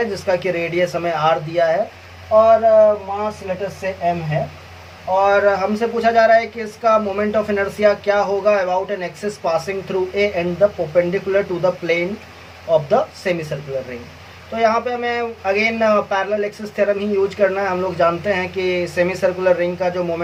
जिसका कि रेडियस हमें R दिया है और मास लेटर से M है, और हमसे पूछा जा रहा है कि इसका मोमेंट ऑफ इनर्शिया क्या होगा about an axis passing through A and the perpendicular to the plane of the semi circular ring. तो यहाँ पे हमें अगेन पैरेलल एक्सिस थ्योरम ही यूज करना है। हम लोग जानते हैं कि सेमी सर्कुलर रिंग का जो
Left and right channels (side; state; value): both; identical; correlation 1.00